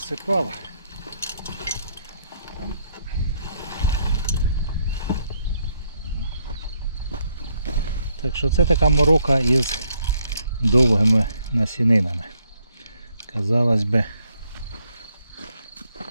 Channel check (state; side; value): inverted; both; correlation -0.73